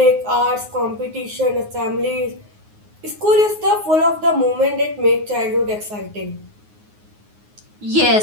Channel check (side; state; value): left; late; 9.5 ms